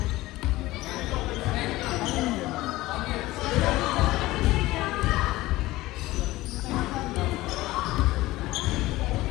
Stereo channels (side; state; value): right; quieter; 18.2 dB